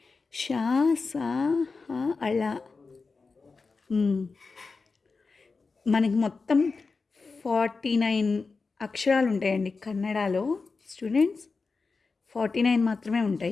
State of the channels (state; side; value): quieter; right; 4.3 dB